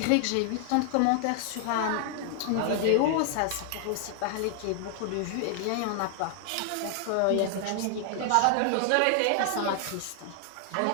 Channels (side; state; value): both; different; correlation 0.00